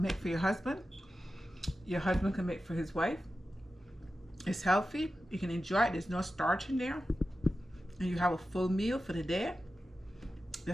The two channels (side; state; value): both; normal; correlation 0.93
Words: make for your husband. Your husband can make for his wife. It's healthy. You can enjoy it. There's no starch in there. And you have a full meal for the day.